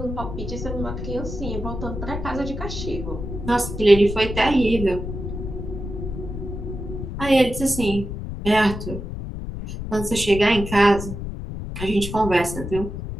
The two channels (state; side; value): noise; left; rumble, 7 dB below the sound